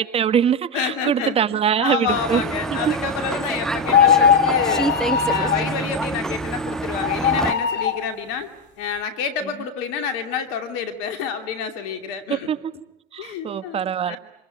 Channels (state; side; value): normal; both; correlation 0.10